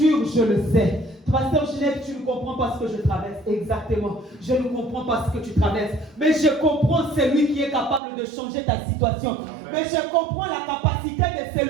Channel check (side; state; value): left; drops out; at 8.0 s